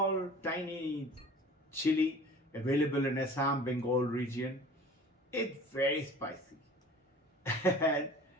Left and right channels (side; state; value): both; normal; correlation 0.44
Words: tiny chili available in Assam, Bengal region. It's very spicy. And